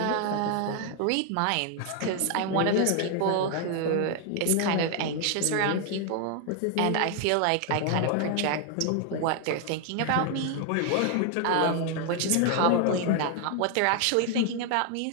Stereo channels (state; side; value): different; both; correlation 0.00